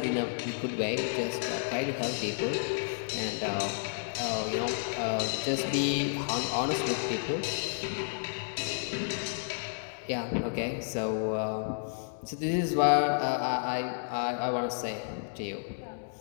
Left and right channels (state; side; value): silent; right; digital silence